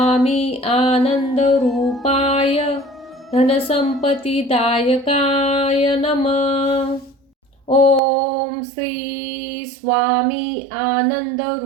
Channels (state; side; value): drops out; left; at 8.0 s